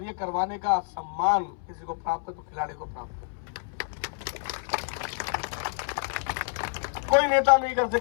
ये करवाने का सम्मान किसी को प्राप्त है तो खिलाड़ी को प्राप्त है। कोई नेता नहीं कर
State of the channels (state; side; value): silent; right; 59 dB below the other